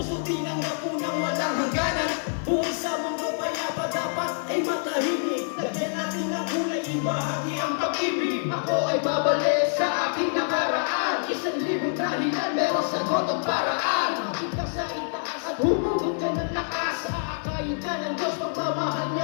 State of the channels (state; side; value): silent; right; 59 dB below the other